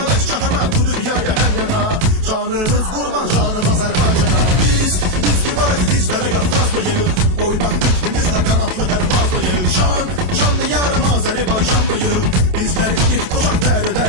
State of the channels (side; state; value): left; late; 28 ms